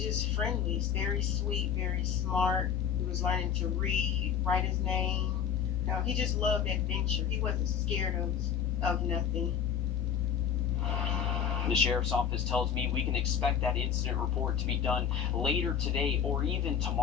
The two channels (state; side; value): quieter; right; 8.0 dB